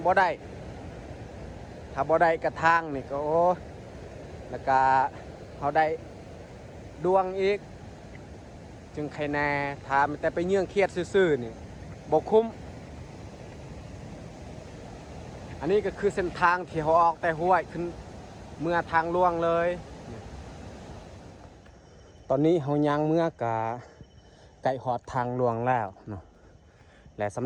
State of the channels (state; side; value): identical; both; correlation 1.00